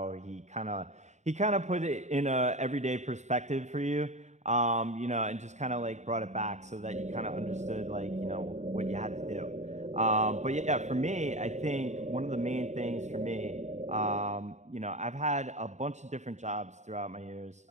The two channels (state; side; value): late; left; 0.34 ms